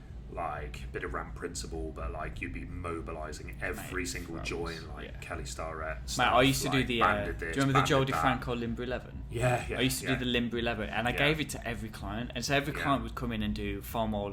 like a bit of ramp principle, but like you'd be mobilising every single joint, like Kelly Starrett. I used to do the. Do you remember the Joe DeFranco Limber 11? Yeah. I used to do the Limber 11, and I gave it to every client, and so every client would come in and do foam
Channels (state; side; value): identical; both; correlation 1.00